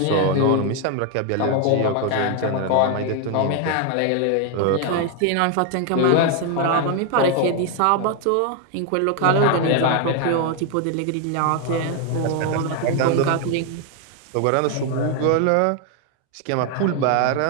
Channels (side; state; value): both; different; correlation 0.01